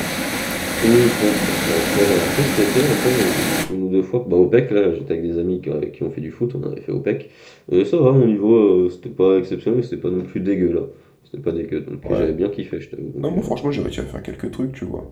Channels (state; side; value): identical; both; correlation 1.00